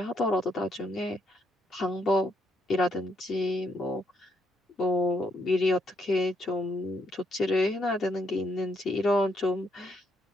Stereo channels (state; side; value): normal; both; correlation 0.75